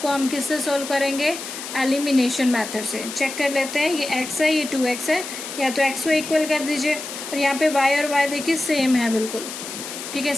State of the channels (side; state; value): left; noise; hiss, 9 dB below the sound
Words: हम किससे सोल्व करेंगे? एलिमिनेशन मेथड से। चेक कर लेते हैं, ये x है, ये 2x है, या तो x को इक्वल कर दीजिए, और यहाँ पे y और y देखिए सेम है बिल्कुल, ठीक है,